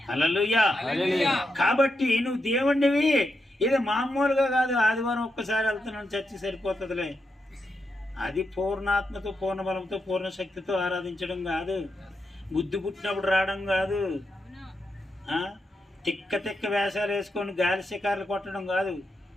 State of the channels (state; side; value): normal; both; correlation 0.85